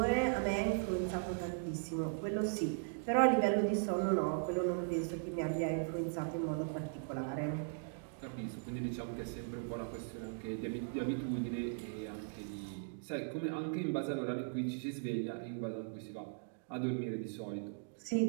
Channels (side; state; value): left; silent; digital silence